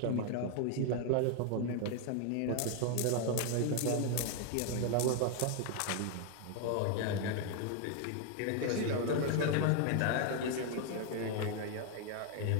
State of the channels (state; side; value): different; both; correlation 0.00